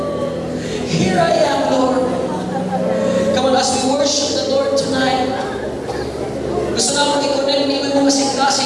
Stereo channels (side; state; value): both; identical; correlation 1.00